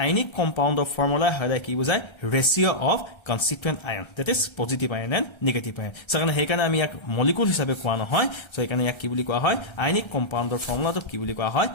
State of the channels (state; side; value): late; right; 1.3 ms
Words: আয়নিক কম্পাউণ্ড অফ ফৰ্মুলা হলে কি বুজায় ratio of constituent ion that is positive ion and negative ion সকাৰণে হেকাৰণে আমি ইয়াক মলিকুল হিচাপে কোৱা নহয় সো হেকাৰণে ইয়াক কি বুলি কোৱা হয় আয়নিক কম্পাউণ্ডৰ ফৰ্মুলাটো কি বুলি কোৱা হয়